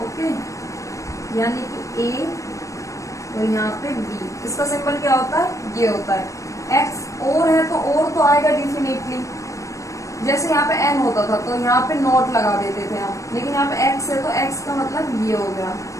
ओके, यानी कि a और यहाँ पे b, इसका सिंबल क्या होता है, ये होता है x। और है तो आएगा डेफिनेटली। जैसे यहाँ पे n होता था तो यहाँ पे नॉट लगा देते थे हम, लेकिन यहाँ पे x है तो x का मतलब ये हो गया।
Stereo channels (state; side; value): late; right; 0.15 ms